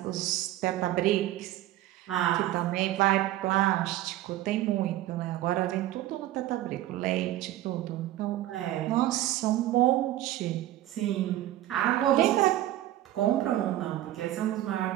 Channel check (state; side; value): quieter; left; 14.4 dB